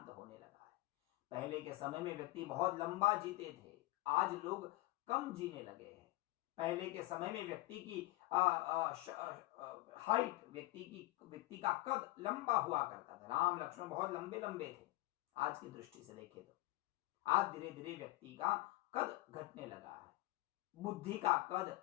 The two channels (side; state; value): right; quieter; 20.2 dB